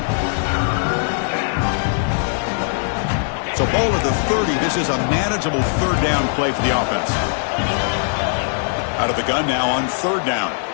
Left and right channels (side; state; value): right; silent; digital silence